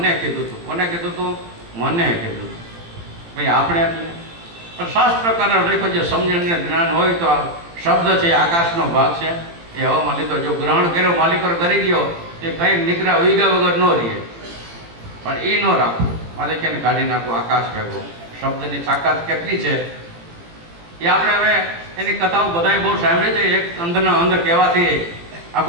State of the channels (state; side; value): late; left; 18 ms